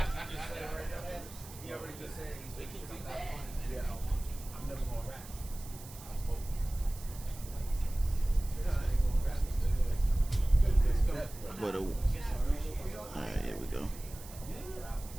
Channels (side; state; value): right; noise; hiss, 16 dB below the sound